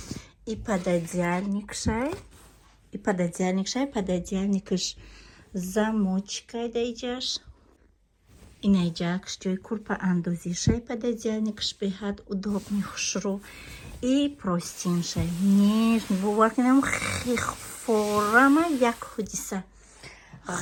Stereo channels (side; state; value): both; identical; correlation 1.00